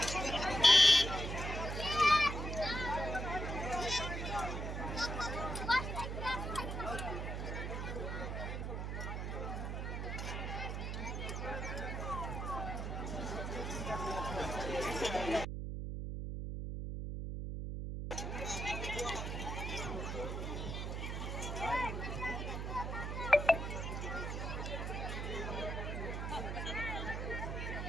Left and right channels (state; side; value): noise; right; hum, 3 dB below the sound